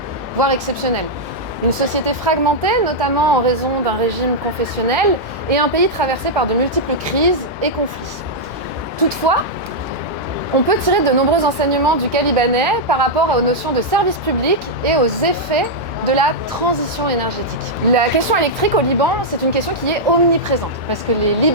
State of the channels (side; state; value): both; normal; correlation -0.06